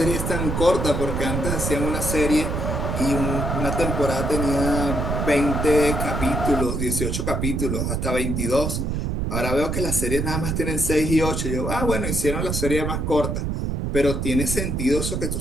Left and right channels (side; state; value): right; noise; rumble, 1 dB below the sound